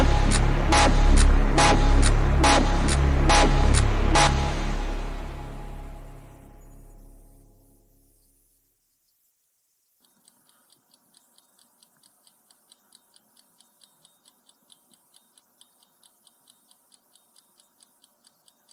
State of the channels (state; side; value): identical; both; correlation 1.00